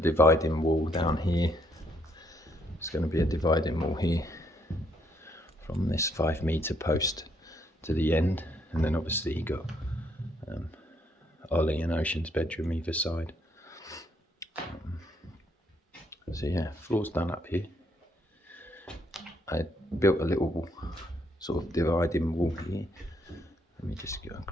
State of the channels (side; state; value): both; normal; correlation 0.72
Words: wall down here. It's going to be a dividing wall here from this 5 meter post to the end, and then obviously you got Ollie and Ocean's bedroom either side. So yeah, floor's done up here. I built a little sort of dividing wall here. Let me just go